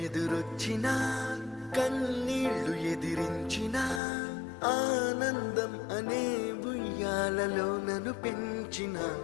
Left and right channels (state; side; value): drops out; right; at 4.0 s